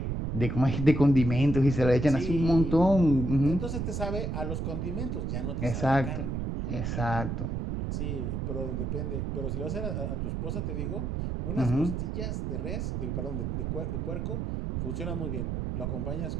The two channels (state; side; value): noise; right; rumble, 2 dB below the sound